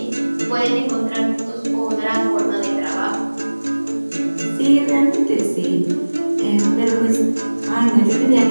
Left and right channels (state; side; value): inverted; both; correlation -1.00